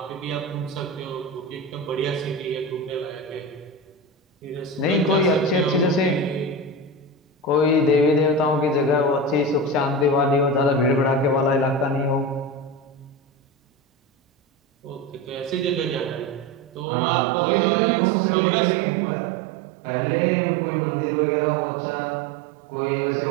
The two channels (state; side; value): drops out; left; at 16.9 s